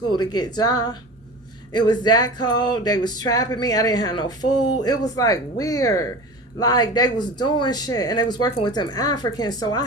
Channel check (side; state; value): both; normal; correlation 0.34